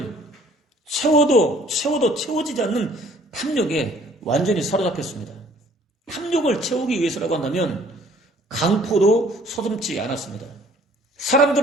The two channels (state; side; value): normal; both; correlation 0.56